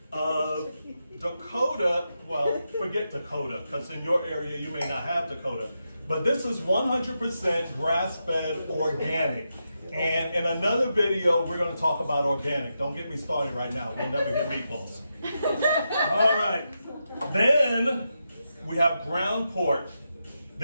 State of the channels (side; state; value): both; inverted; correlation -0.86